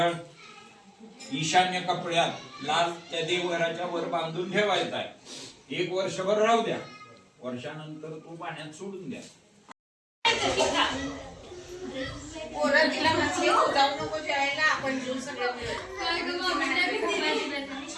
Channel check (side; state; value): both; identical; correlation 1.00